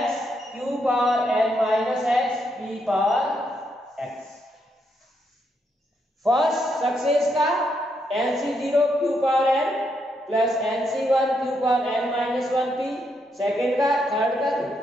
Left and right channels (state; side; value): normal; both; correlation 0.78